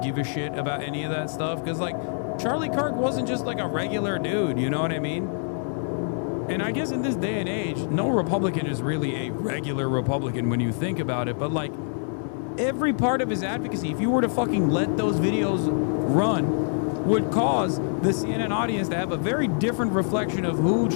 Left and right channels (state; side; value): silent; right; digital silence